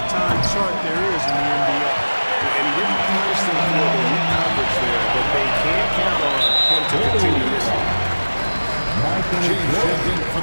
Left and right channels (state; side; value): inverted; both; correlation -1.00